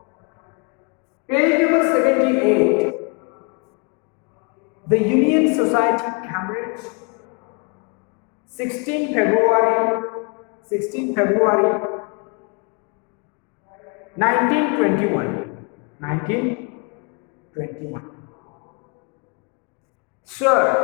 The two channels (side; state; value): right; quieter; 34.1 dB